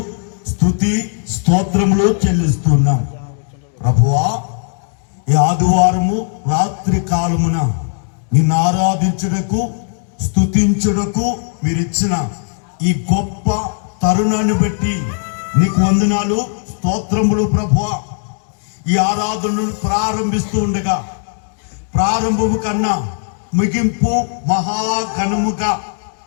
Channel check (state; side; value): silent; right; 59 dB below the other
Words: స్తుతి, స్తోత్రములు చెల్లిస్తున్నాం. ప్రభువా, ఈ ఆదివారము రాత్రి కాలమున నిన్ను ఆరాధించుటకు, స్తుతించుటకు మీరిచ్చిన ఈ గొప్ప తరుణాన్ని బట్టి నీకు వందనాలు, స్తోత్రములు. ప్రభువా, ఈ ఆరాధనను ప్రారంభిస్తూ ఉండగా ప్రారంభము కన్నా ముగింపు మహాఘనముగా